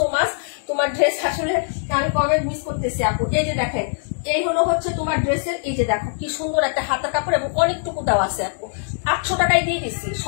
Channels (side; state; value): right; silent; 64 dB below the other